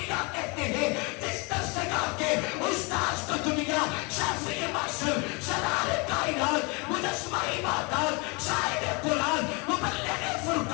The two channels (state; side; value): quieter; right; 30.3 dB